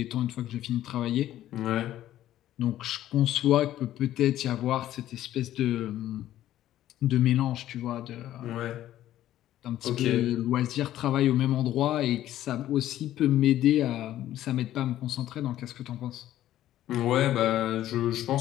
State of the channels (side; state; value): right; quieter; 13.1 dB